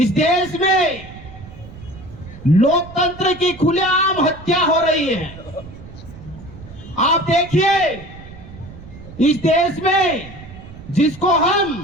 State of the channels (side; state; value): right; noise; rumble, 17 dB below the sound